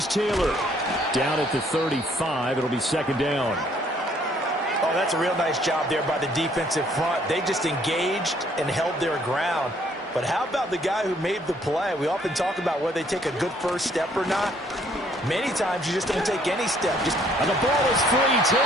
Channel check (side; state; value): both; normal; correlation 0.64